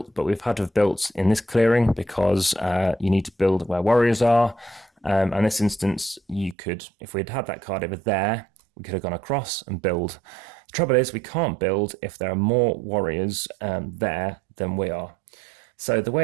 but we've had to have built in this clearing because you need to build where warriors are. And in this instance, you could, if we'd had that card over there, we could have gone across and build. The trouble is we can't build if there are more warriors there than we are. So the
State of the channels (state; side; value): drops out; left; at 6.6 s